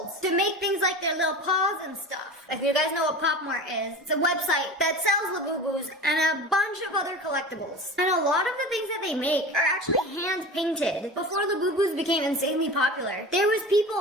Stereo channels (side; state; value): both; normal; correlation 0.33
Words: to make things like their little paws and stuff. If you guys know what Pop Mart is, it's a website that sells Labubus and a bunch of other collectibles. And a lot of the things that they make are actually hand painted. Before Labubus became insanely popular, there was